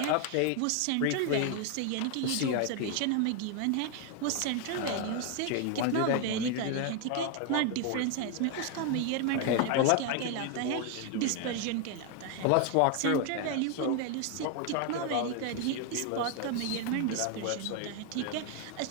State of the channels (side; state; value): both; different; correlation 0.00